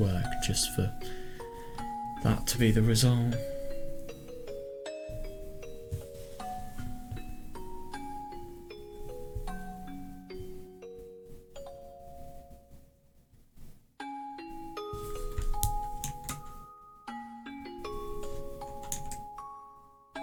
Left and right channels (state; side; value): identical; both; correlation 1.00